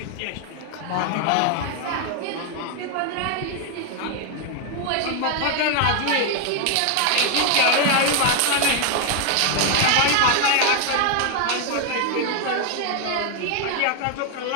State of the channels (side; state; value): both; different; correlation 0.01